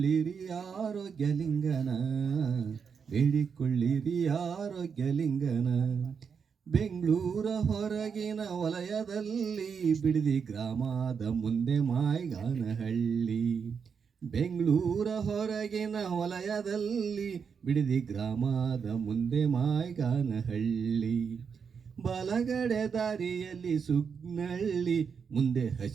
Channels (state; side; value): quieter; left; 6.3 dB